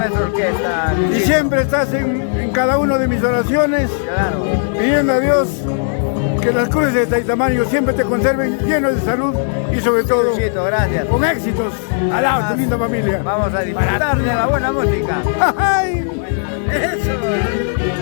orquesta. Y siempre estás en cada una de mis oraciones, Claro. pidiendo a Dios que las cruces de Taitamayo siempre te conserven llenos de salud y sobre todo Luchito, gracias. con éxitos. Al lado de tu linda familia. Vamos a disfrutar de la buena música. ¡Ay! Eso.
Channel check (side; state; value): right; silent; digital silence